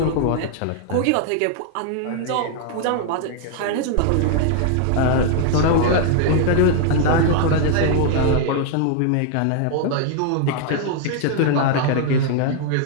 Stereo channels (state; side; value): different; both; correlation 0.00